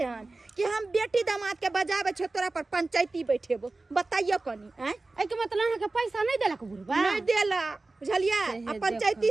हन कि हम बेटी दामाद के बजावे छ तोरा पर पंचायती बैठेबो बताइयो कनी हैं ए के मतलब अहाँ के पैसा नहीं देलक बुढ़वा नहीं देला बुझलिए आ पंचायती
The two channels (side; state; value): left; quieter; 3.3 dB